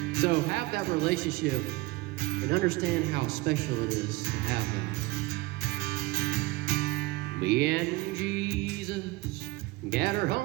So have that relationship and understand how special it is to have that. Me and Jesus got our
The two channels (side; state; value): left; quieter; 21.5 dB